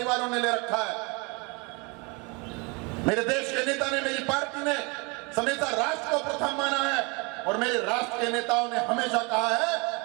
ने ले रखा है। मेरे देश के नेता ने, मेरी पार्टी ने हमेशा राष्ट्र को प्रथम माना है और मेरे राष्ट्र के नेताओं ने हमेशा कहा है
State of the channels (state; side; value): quieter; left; 29.8 dB